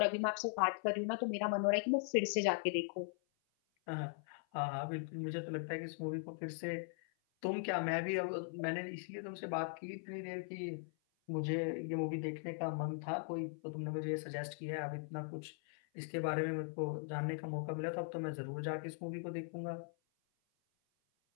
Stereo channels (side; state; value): right; silent; 51 dB below the other